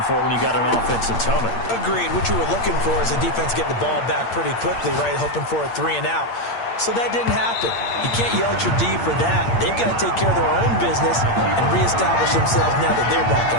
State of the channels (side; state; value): right; late; 8.7 ms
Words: for when you got an offense that's humming. Agreed. What you were looking for is the defense getting the ball back pretty quickly, right? Hoping for a 3 and out. So that didn't happen. You can't yell at your D for that. They've got to take care of their own business and reestablish themselves now that they're back